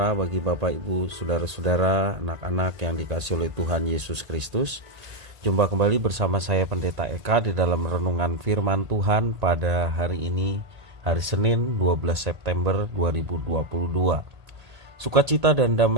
bagi Bapak Ibu, Saudara-saudara, anak-anak yang dikasihi oleh Tuhan Yesus Kristus. Jumpa kembali bersama saya Pendeta Eka di dalam renungan firman Tuhan pada hari ini, hari Senin 12 September 2022. Sukacita dan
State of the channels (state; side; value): late; left; 1.5 ms